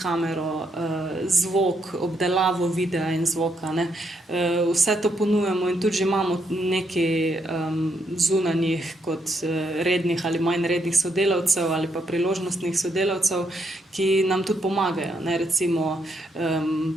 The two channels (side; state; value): both; normal; correlation 0.76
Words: zvok, obdelavo videa in zvoka, ne. Vse to ponujamo in tudi že imamo nekaj zunanjih kot rednih ali manj rednih sodelavcev ali pa priložnostnih sodelavcev, ki nam tudi pomagajo, ne, recimo